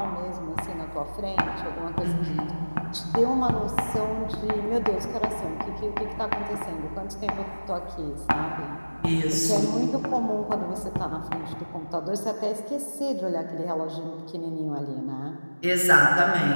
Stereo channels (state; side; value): inverted; both; correlation -1.00